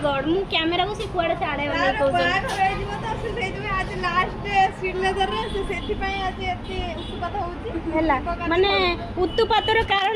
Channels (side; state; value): both; identical; correlation 1.00